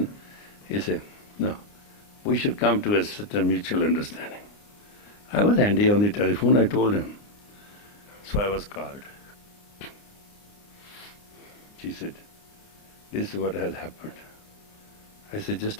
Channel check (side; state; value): right; late; 29 ms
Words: he said, no, we should come to a certain mutual understanding. I was handy on the telephone, I told him. So I was called. She said, this is what has happened. I said,